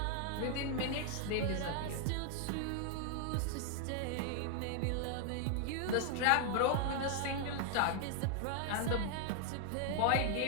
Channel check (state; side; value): different; both; correlation 0.00